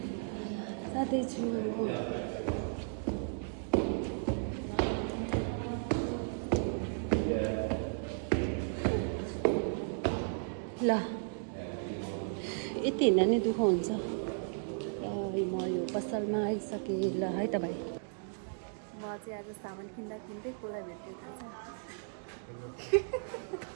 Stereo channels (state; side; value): silent; left; digital silence